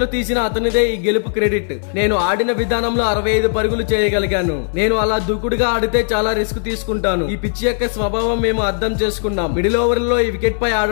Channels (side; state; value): right; silent; digital silence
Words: తీసిన అతనిదే ఈ గెలుపు క్రెడిట్. నేను ఆడిన విధానంలో 65 పరుగులు చేయగలిగాను. నేను అలా దూకుడుగా ఆడితే చాలా రిస్క్ తీసుకుంటాను. ఈ పిచ్ యొక్క స్వభావం మేము అర్థం చేసుకున్నాం. మిడిల్ ఓవర్ లో ఈ వికెట్ పై